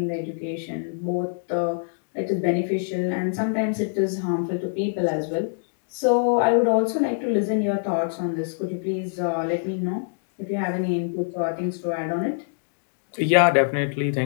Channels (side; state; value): right; silent; digital silence